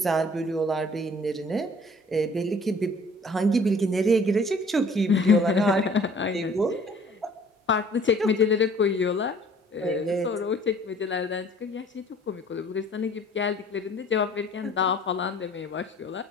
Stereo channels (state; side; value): normal; both; correlation 0.53